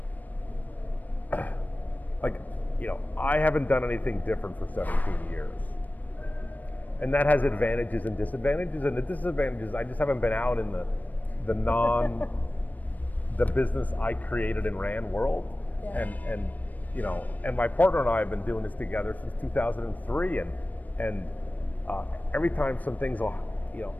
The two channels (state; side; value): late; right; 0.080 ms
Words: like, I haven't done anything different for 17 years. And that has advantages and disadvantages. And the disadvantages, I just haven't been out in the business I created and ran world. Yeah. And my partner and I have been doing this together since 2003. And every time some things will,